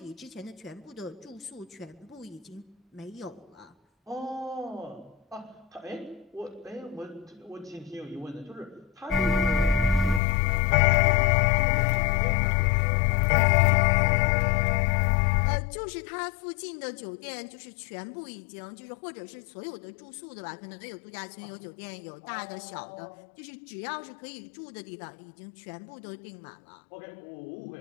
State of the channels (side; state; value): right; drops out; at 10.2 s